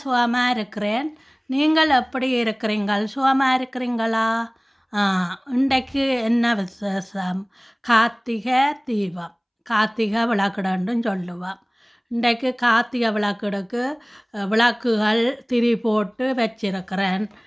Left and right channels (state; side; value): identical; both; correlation 1.00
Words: சுகமாக இருக்கிறேன். நீங்கள் எப்படி இருக்கிறீங்கள்? சுகமாக இருக்கிறீங்களா? இன்றைக்கு என்ன விசேஷம்? கார்த்திகை தீபம், கார்த்திகை விளக்குடன்றும் சொல்லுவோம். இன்றைக்கு கார்த்திகை விளக்குடுக்கு விளக்குகள் திரி போட்டு வச்சிருக்கிறேன்.